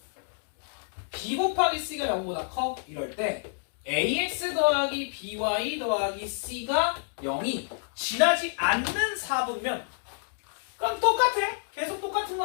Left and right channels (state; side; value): silent; right; digital silence